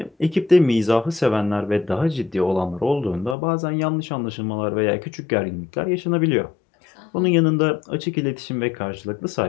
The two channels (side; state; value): right; drops out; at 3.4 s